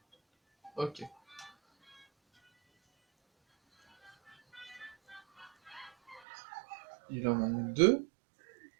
Ok. Il en manque deux.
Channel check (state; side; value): drops out; left; at 6.2 s